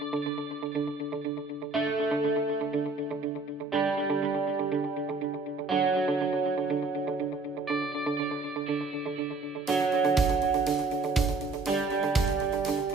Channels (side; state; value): left; quieter; 3.7 dB